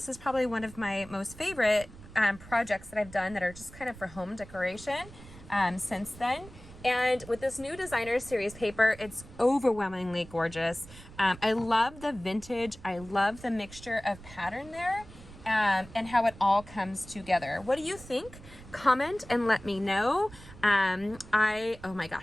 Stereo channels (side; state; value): right; noise; rumble, 18 dB below the sound